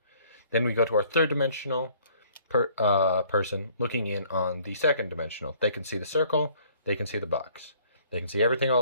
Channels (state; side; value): inverted; both; correlation -0.59